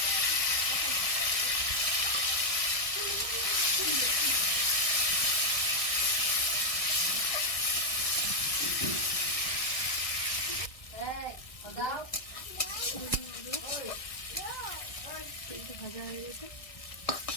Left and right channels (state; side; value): late; right; 1.6 ms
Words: তেলটা ভাজা হয়ে গেছে,